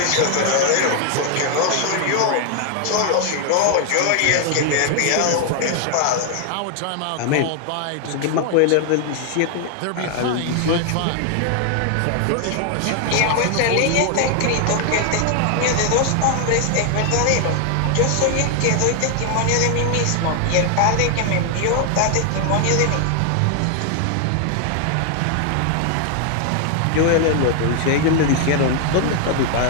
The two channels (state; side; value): different; both; correlation 0.00